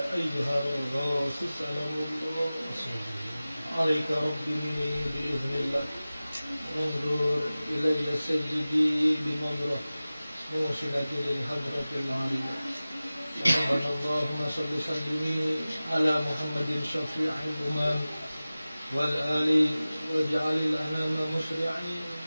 أيها الغوث سلام الله عليك ربي بإذن الله انظر إلي سيدي بنظرة موصلة للحضرة العالية ربنا اللهم صل وسلم على محمد شفيع الأمم والآل واجعل الأنام مسرعين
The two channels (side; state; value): both; inverted; correlation -0.97